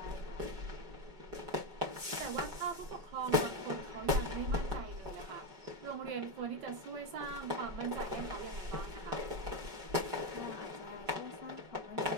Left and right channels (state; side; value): late; left; 5.2 ms